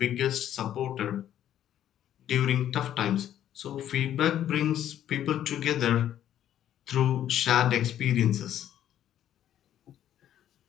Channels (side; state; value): right; quieter; 11.1 dB